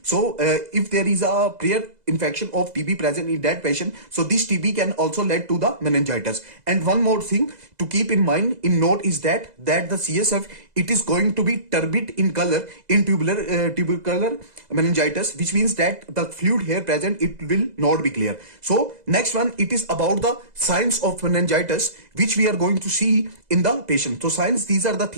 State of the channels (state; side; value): late; left; 2.0 ms